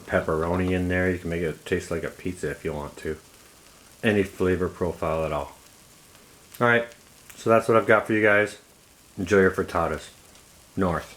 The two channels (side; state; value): both; identical; correlation 1.00